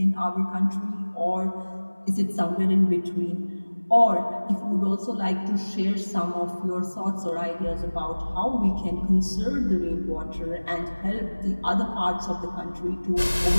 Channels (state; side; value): inverted; both; correlation -1.00